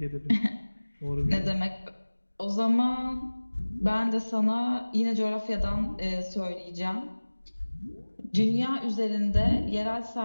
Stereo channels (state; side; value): inverted; both; correlation -1.00